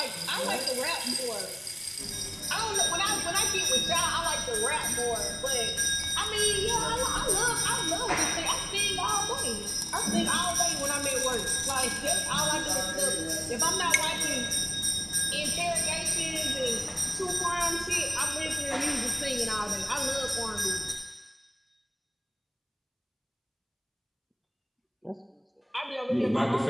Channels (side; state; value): both; identical; correlation 1.00